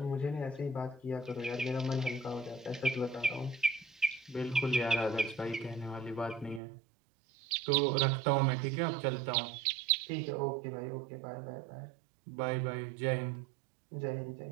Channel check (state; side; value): drops out; left; at 6.6 s